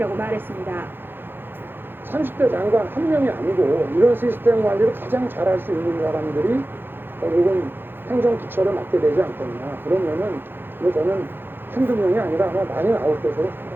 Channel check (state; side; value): late; left; 0.10 ms